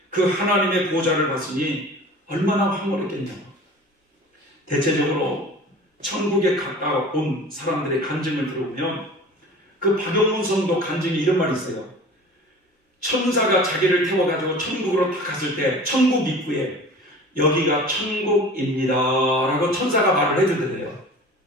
그 하나님의 보좌를 봤으니 얼마나 황홀했겠냐고. 대체적으로 천국에 가까운 사람들의 간증을 들어보면 그 박영문 성도 간증에 이런 말이 있어요. 천사가 자기를 태워가지고 천국으로 딱 갔을 때 천국 입구에 여기가 천국입니다 라고 천사가 말을 해주던데요.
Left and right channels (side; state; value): both; normal; correlation 0.41